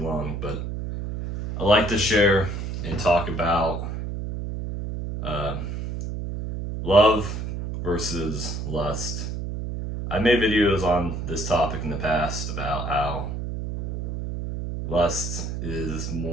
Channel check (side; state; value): right; noise; hum, 5 dB below the sound